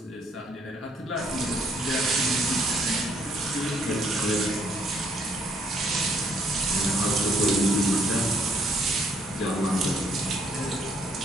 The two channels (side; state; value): both; normal; correlation 0.68